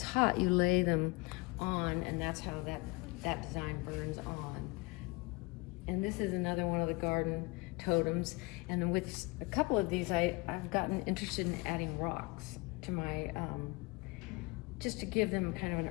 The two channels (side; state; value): right; quieter; 26.1 dB